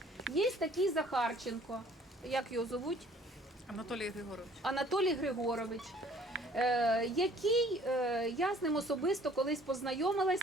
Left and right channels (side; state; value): both; normal; correlation 0.55